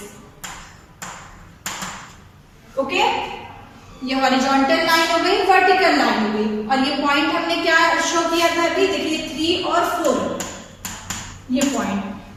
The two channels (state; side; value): identical; both; correlation 1.00